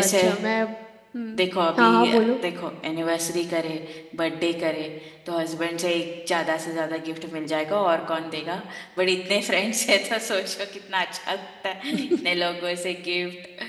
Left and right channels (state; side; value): identical; both; correlation 1.00